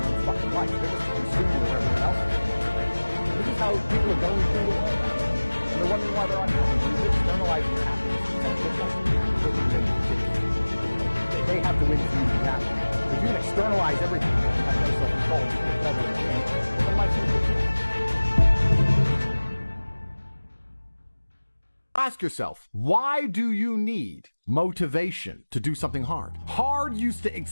own fucking life. They're just a consumer of everyone else. This is how people are going through the world. And they're wondering why they're unhappy. You're externalizing your happiness to some they have to win for you to be happy. If you can externalize everything and have no self-control, it's better than you. Then life's good. Ask yourself, why do you need motivation to do something hard? Hard used to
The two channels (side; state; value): both; inverted; correlation -1.00